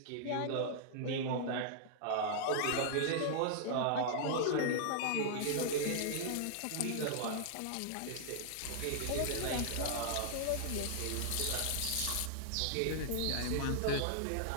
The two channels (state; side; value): different; both; correlation -0.01